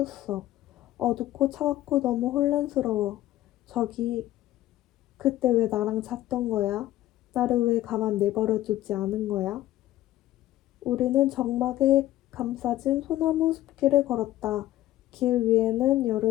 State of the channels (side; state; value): right; quieter; 14.6 dB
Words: 어둡고 차갑고 너무 혼란스러워. 저기, 그때 왜 나랑 잤던 거야? 나를 왜 가만 내버려 두지 않은 거야? 우리는 적막에 감싸진 소나무 숲길을 걸었다. 길 위에는